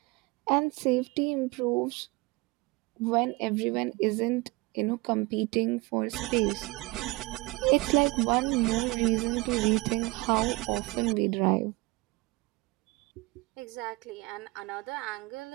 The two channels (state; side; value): quieter; left; 23.7 dB